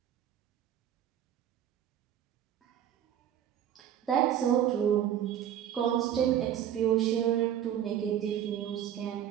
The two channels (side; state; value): left; quieter; 10.3 dB